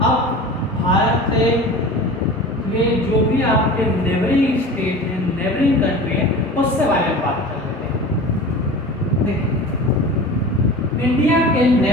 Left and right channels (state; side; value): normal; both; correlation 0.36